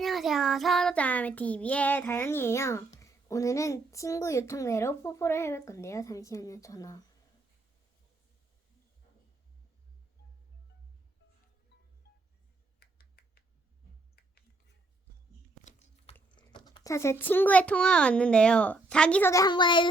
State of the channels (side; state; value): left; quieter; 3.1 dB